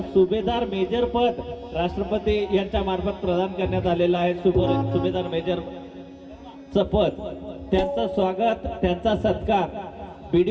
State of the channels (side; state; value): both; identical; correlation 1.00